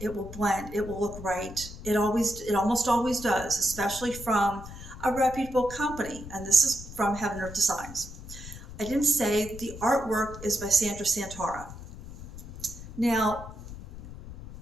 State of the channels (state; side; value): noise; left; rumble, 13 dB below the sound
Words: will blend, it will look right. It almost always does, especially from a reputable company. And this is from Heaven Earth Designs. I didn't say the artwork is by Santara. Now,